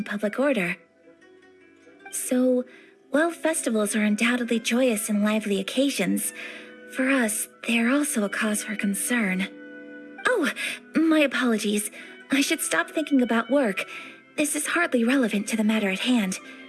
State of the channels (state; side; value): identical; both; correlation 1.00